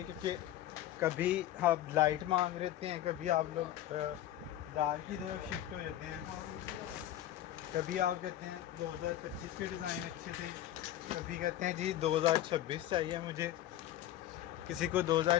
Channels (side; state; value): right; quieter; 13.0 dB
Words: क्योंकि कभी आप लाइट मांग लेते हैं, कभी आप लोग डार्क की तरफ शिफ्ट हो जाते हैं, कभी आप कहते हैं 2025 के डिज़ाइन अच्छे थे, कभी कहते हैं जी 2026 चाहिए मुझे, किसी को